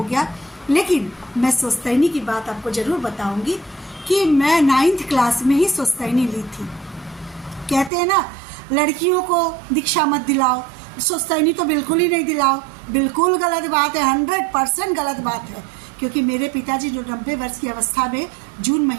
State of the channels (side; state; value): left; drops out; at 7.9 s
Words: गया। लेकिन मैं स्वस्तैनी की बात आपको ज़रूर बताऊँगी कि मैं 9th क्लास में ही स्वस्तैनी ली थी। कहते हैं ना, लड़कियों को दीक्षा मत दिलाओ, स्वस्तैनी तो बिल्कुल ही नहीं दिलाओ। बिल्कुल गलत बात है, 100% गलत बात है, क्योंकि मेरे पिताजी जो 90 वर्ष की अवस्था में जून